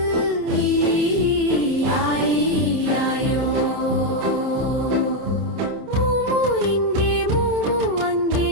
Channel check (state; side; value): late; left; 27 ms